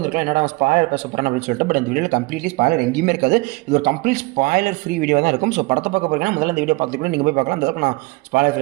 என்னடா ஸ்பாயிலர் பேச போகிறேன் அப்படின்னு சொல்லிட்டு. பட் இந்த வீடியோவில் கம்ப்ளீட்லி ஸ்பாயிலர் எங்கேயுமே இருக்காது. இது ஒரு கம்ப்ளீட் ஸ்பாயிலர் ஃப்ரீ வீடியோ தான் இருக்கும். ஸோ படத்தை பார்க்க போகிறீங்கன்னா முதல்ல இந்த வீடியோ பார்த்துக்கிட்டு நீங்கள் போய் பார்க்கலாம். அந்த நான் ஸ்பாயிலர்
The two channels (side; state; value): left; quieter; 23.9 dB